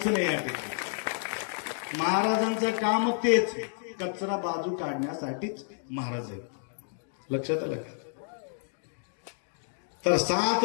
नाही या ठिकाणी. महाराजांचं काम तेच, कचरा बाजू काढण्यासाठीच महाराज आहेत. लक्षात आलं का? तर 7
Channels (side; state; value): right; silent; digital silence